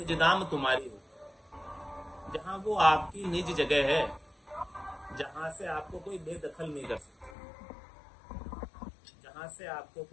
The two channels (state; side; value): drops out; right; at 7.4 s